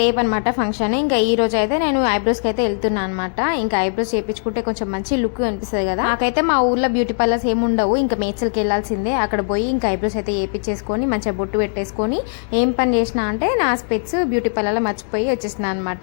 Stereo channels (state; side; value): silent; right; digital silence